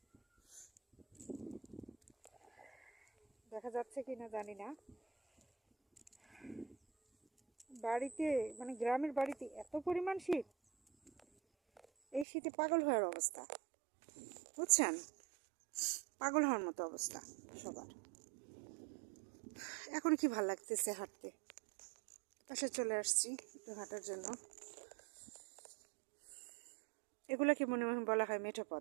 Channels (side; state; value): left; drops out; at 12.2 s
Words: দেখা যাচ্ছে কি না জানি না, বাড়িতে মানে গ্রামের বাড়িতে এত পরিমাণ শীত, এই শীতে পাগল হওয়ার অবস্থা, বুঝছেন? পাগল হওয়ার মতো অবস্থা সবার। এখন কি ভাল লাগতেছে হাঁটতে, পাশে চলে আসছি একটু হাঁটার জন্য। এগুলোকে মনে বলা হয় মেঠো